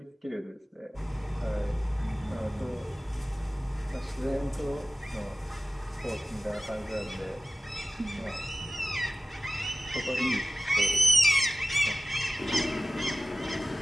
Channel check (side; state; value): both; normal; correlation 0.96